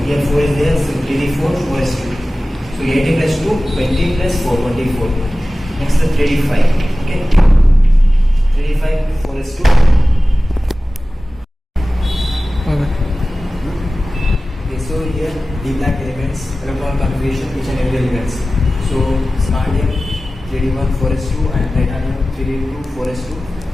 Here 4 is there, so 3D4, 4S2. So 18 plus 2, 20 plus 4, 24. Next 3D5. Okay. 3D5, 4S2. Okay, so here D black elements, electron configuration, each and every elements. So scandium 3D1 4S2 and titanium 3D2 4S2.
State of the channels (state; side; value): normal; both; correlation 0.96